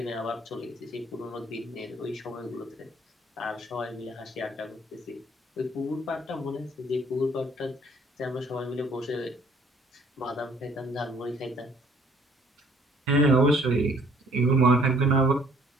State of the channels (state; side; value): normal; both; correlation 0.60